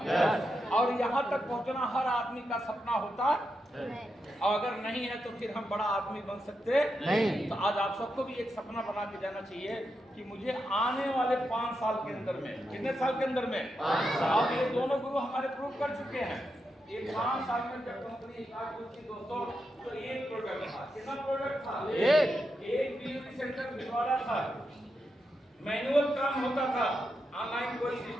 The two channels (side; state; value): both; normal; correlation 0.86